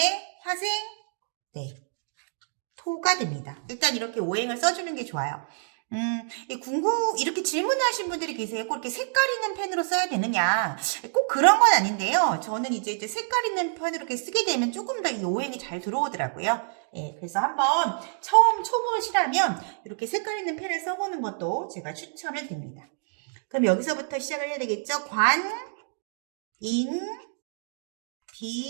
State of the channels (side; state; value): left; silent; digital silence